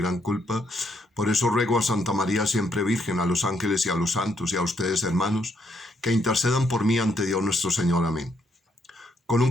culpa. Por eso ruego a Santa María, siempre Virgen, a los ángeles y a los santos y a ustedes, hermanos, que intercedan por mí ante Dios nuestro Señor. Amén. Con un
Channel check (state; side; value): normal; both; correlation 0.74